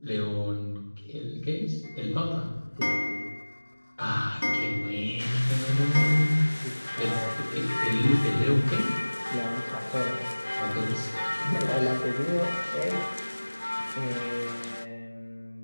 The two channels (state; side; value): inverted; both; correlation -1.00